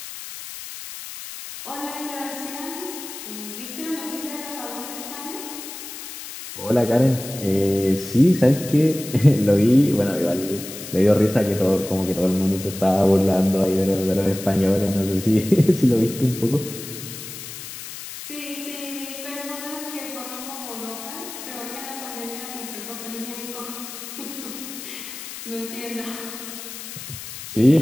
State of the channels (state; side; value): noise; left; hiss, 11 dB below the sound